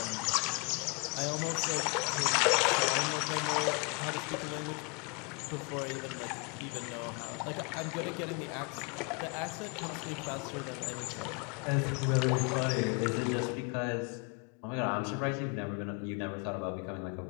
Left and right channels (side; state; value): right; quieter; 32.0 dB